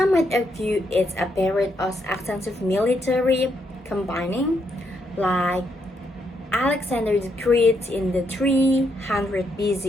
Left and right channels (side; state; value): both; normal; correlation 0.77